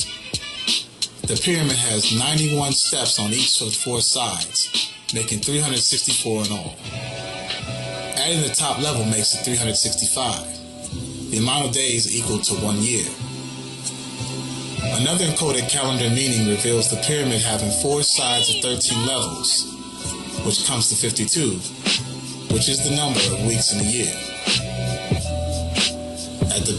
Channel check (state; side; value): identical; both; correlation 1.00